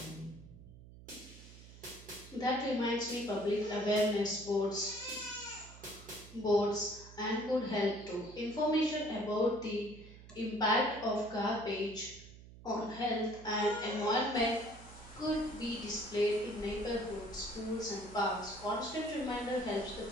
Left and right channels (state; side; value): noise; right; hum, 18 dB below the sound